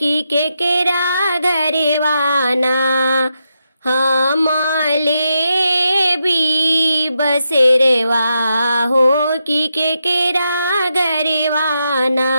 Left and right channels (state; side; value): inverted; both; correlation -0.84